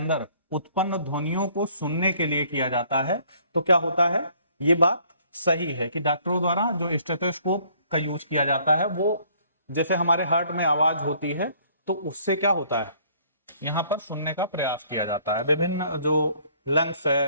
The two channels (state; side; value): inverted; both; correlation -0.60